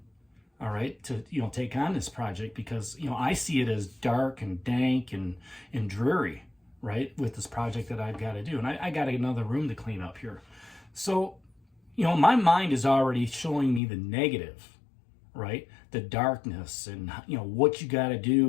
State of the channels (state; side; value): drops out; right; at 13.8 s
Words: all right, to take on this project, because I see it as dark and dank and dreary, right, with this project that I've got to do. And I got another room to clean up here. So, my mind is already showing me the negative, right, the darkness and what you got to